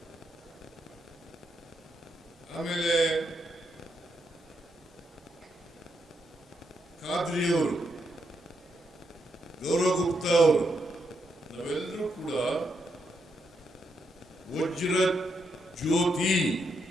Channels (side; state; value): both; normal; correlation 0.80